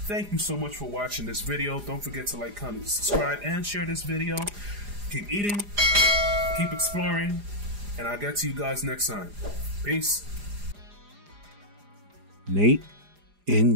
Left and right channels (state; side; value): late; left; 4.9 ms